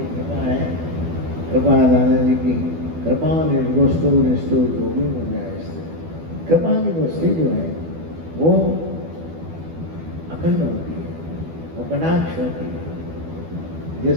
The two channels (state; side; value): late; left; 12 ms